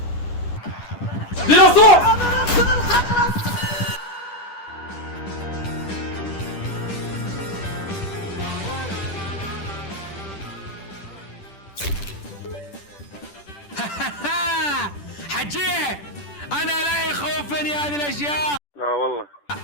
ديناصور. حجيه انا لا يخوفني هذه الاشياء. لا والله.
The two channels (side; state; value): right; late; 10 ms